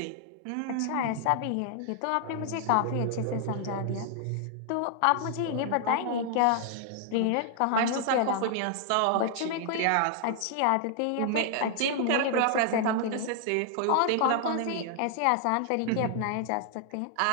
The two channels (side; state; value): both; different; correlation 0.00